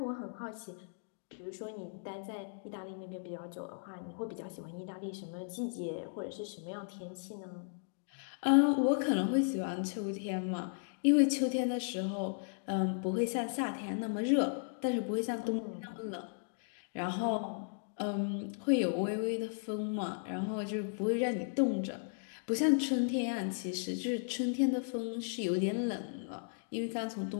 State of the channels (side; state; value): right; silent; digital silence